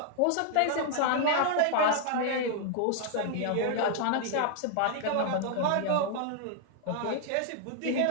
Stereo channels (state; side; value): different; both; correlation 0.00